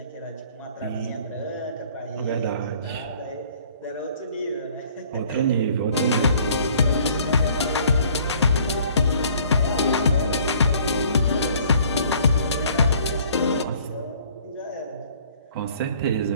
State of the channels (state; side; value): inverted; both; correlation -0.56